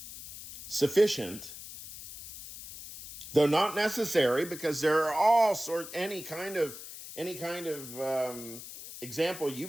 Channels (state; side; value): noise; left; hiss, 13 dB below the sound